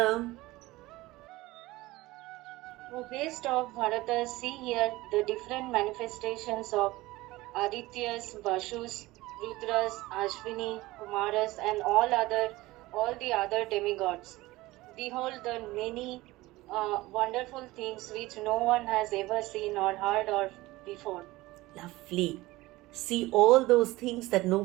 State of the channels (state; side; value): quieter; left; 19.3 dB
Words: O beast of Bharata, see here the different manifestations of Adityas, Vashus, Rudras, Ashwini, Kumaras, and all the other demigods. Behold the many wonderful things which no one has ever seen or heard of before. Lovely. See all those things that